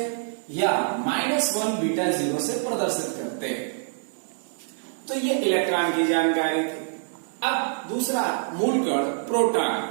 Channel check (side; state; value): left; silent; 61 dB below the other